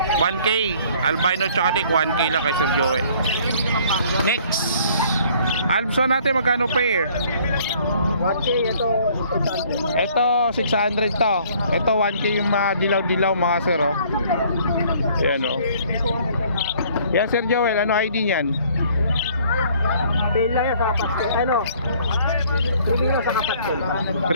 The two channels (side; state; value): both; inverted; correlation -0.58